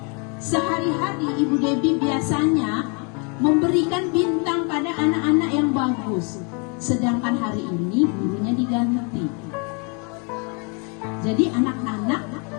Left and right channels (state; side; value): quieter; right; 35.1 dB